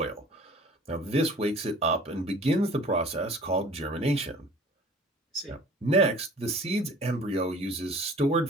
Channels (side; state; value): both; normal; correlation 0.47